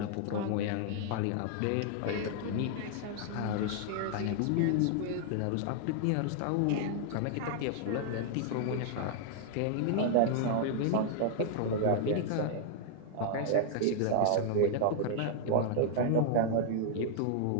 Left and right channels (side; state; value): both; different; correlation -0.01